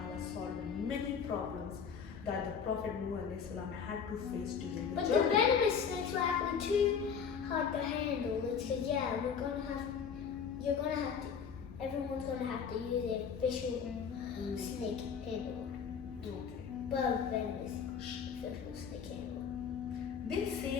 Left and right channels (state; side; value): quieter; right; 6.8 dB